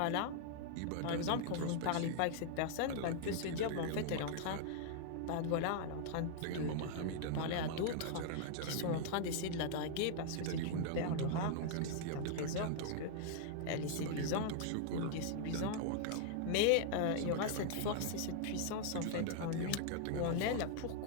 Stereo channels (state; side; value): different; both; correlation -0.01